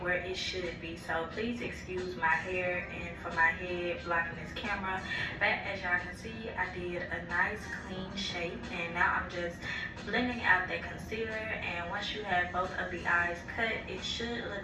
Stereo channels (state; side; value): identical; both; correlation 1.00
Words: it should be. So please excuse my hair and for my head blocking this camera. But as y'all can see, I did a nice clean shape and now I'm just blending out that concealer. And once you have both of the eyes cut, it should look